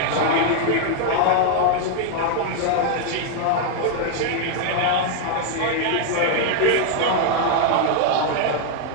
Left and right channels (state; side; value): different; both; correlation 0.00